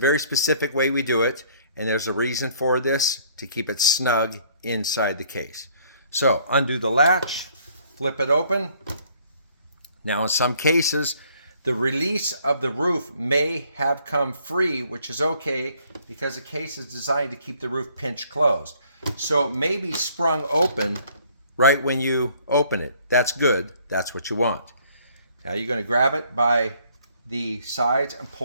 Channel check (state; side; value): inverted; both; correlation -0.61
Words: specific way we do it, and there's a reason for this, to keep it snug inside the case. So undo the latch, flip it open. Now in some cases, the release of the roof may have come free, which is okay because the case is designed to keep the roof pinch closed. So it may be sprung open right when you open it. That's good. That's what you want. Now you're going to grab it by the sides and